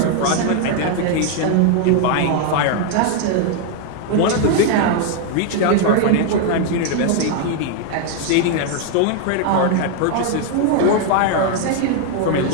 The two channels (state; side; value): different; both; correlation 0.00